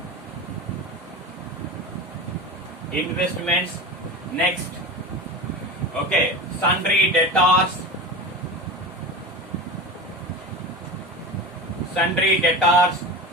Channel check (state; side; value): normal; both; correlation 0.28